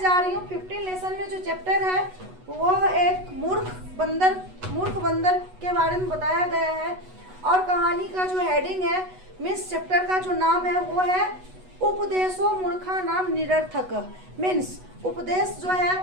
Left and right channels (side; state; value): left; late; 8.1 ms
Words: रही हूँ। 15 लेसन में जो चैप्टर है वह एक मूर्ख बंदर के बारे में बताया गया है। और कहानी का जो हेडिंग है मीन्स चैप्टर का जो नाम है वो है उपदेशो मूर्खा नाम निरर्थक। मीन्स उपदेश जो है